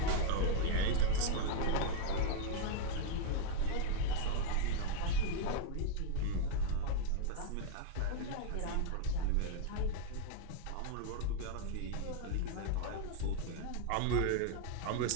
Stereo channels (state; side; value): different; both; correlation 0.00